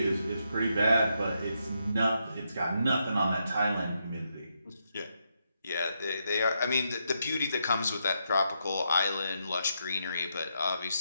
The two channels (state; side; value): inverted; both; correlation -0.81